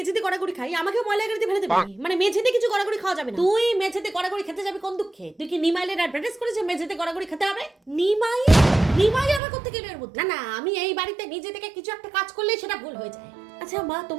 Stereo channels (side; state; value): left; drops out; at 9.4 s